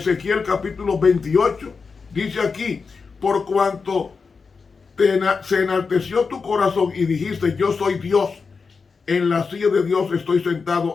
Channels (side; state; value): right; quieter; 5.0 dB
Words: capítulo 28 Dice aquí, por cuanto se enalteció tu corazón y dijiste, yo soy Dios, en la silla de Dios estoy